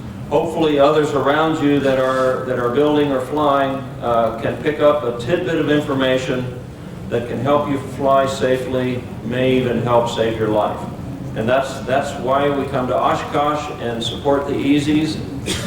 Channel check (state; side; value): identical; both; correlation 1.00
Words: hopefully others around you that are building or flying can pick up a tidbit of information that can help you fly safely, may even help save your life. And that's why we come to Oshkosh and support the Easies.